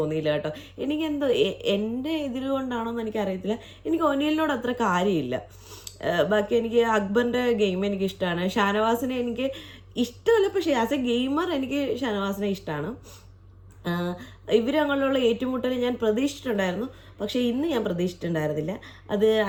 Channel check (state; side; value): identical; both; correlation 1.00